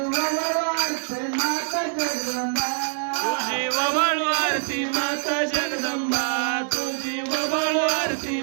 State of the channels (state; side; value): silent; left; 62 dB below the other